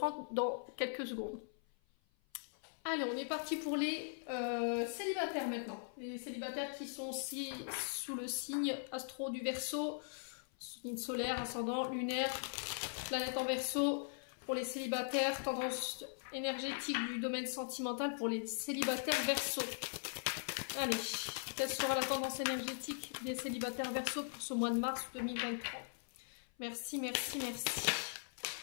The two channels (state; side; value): silent; right; 51 dB below the other